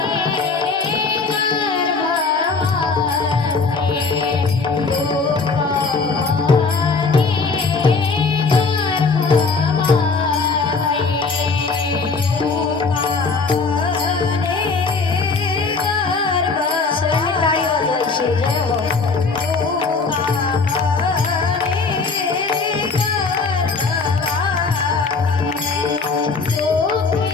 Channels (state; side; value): quieter; right; 4.4 dB